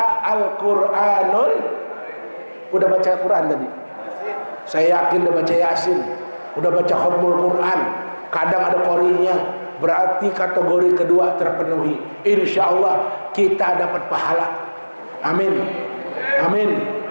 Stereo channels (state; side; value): inverted; both; correlation -1.00